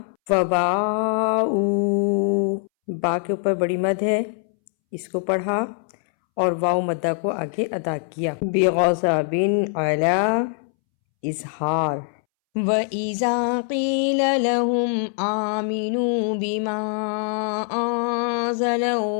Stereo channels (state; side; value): silent; right; 64 dB below the other